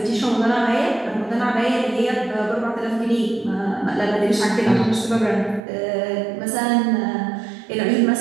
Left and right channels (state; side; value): drops out; left; at 5.6 s